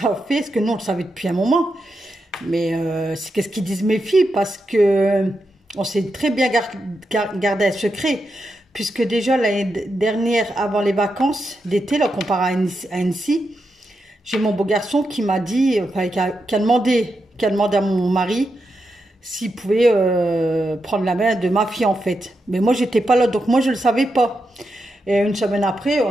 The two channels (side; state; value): both; normal; correlation 0.86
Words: a fait? Parce que nous, on le savait depuis un moment. Mais c'est qu'est-ce qu'ils disent mes filles? Parce que on s'est très bien gardé un secret. Puisque déjà, l'année dernière, avant les vacances d'été, là, comparé à Annecy, j'ai mon beau garçon qui m'a dit, enfin, qui a demandé à mon mari s'il pouvait prendre la main de ma fille, en fait. Mais moi, j'étais pas là, donc moi, je ne le savais pas. Et une semaine après,